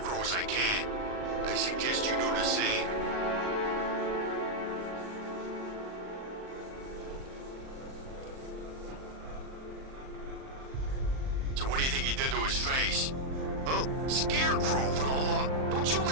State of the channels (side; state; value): left; late; 38 ms